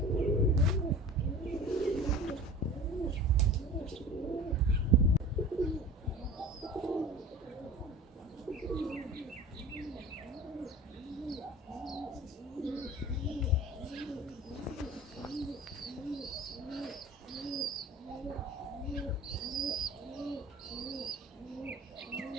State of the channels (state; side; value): normal; both; correlation 0.39